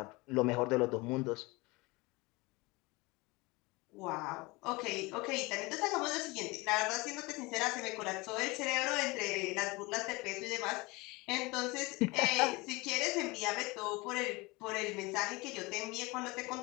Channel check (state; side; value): quieter; right; 24.0 dB